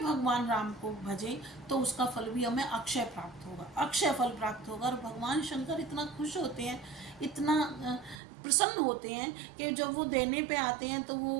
भगवान राम को भजें, तो उसका फल भी हमें अक्षय प्राप्त होगा, अक्षय फल प्राप्त होगा। और भगवान शंकर इतना खुश होते हैं, इतना प्रसन्न होते हैं कि जब वो देने पे आते हैं तो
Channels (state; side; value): drops out; left; at 8.2 s